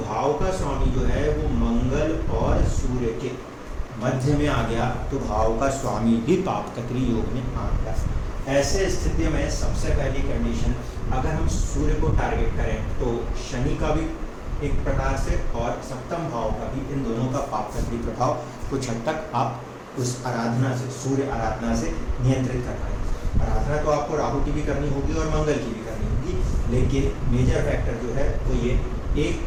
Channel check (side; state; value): both; identical; correlation 1.00